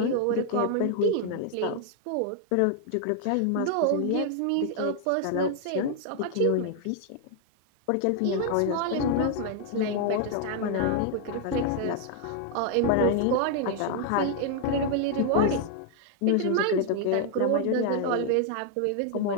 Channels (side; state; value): both; different; correlation 0.00